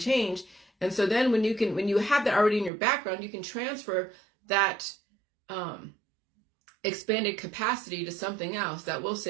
change, And so then when you have that already in your background, you can transfer that expanded capacity to something else that will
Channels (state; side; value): drops out; left; at 2.7 s